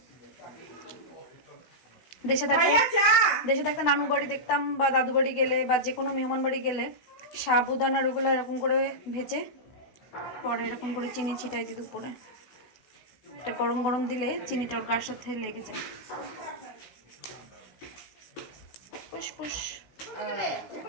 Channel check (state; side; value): late; right; 16 ms